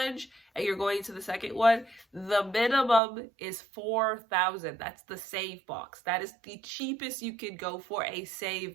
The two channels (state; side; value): drops out; left; at 3.0 s